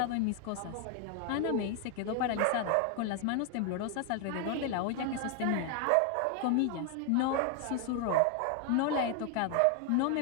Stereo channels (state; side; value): different; both; correlation 0.00